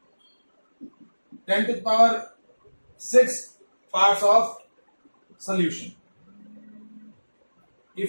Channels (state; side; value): inverted; both; correlation -1.00